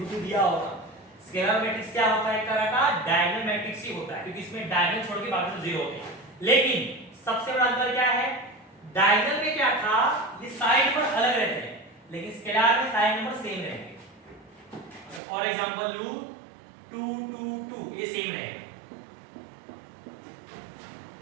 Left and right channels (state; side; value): drops out; left; at 15.2 s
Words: पे दिया होगा। स्केलर मैट्रिक्स क्या होता है, एक तरह का डायगोनल मैट्रिक्स ही होता है, क्योंकि इसमें डायगोनल छोड़ के बाकी सब जीरो होते हैं। लेकिन सबसे बड़ा अंतर क्या है, डायगोनल में क्या था, ये साइड नंबर अलग रहते हैं, लेकिन स्केलर में साइड नंबर सेम रहेंगे। और एग्जांपल लूं 2 2 2, ये सेम रहेगा,